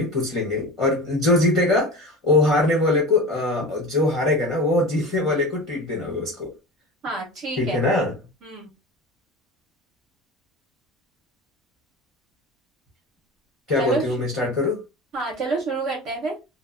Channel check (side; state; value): both; normal; correlation 0.30